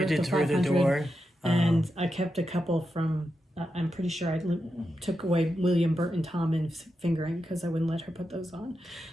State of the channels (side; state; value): both; normal; correlation 0.88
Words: did Through the Door. And I kept a couple from... I'm pretty sure I took away William Burton Tommen's fingering because I wouldn't let her put those on.